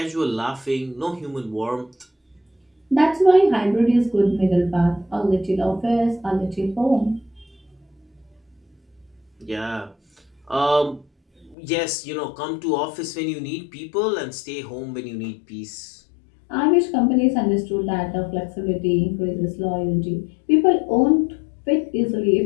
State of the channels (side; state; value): right; drops out; at 11.6 s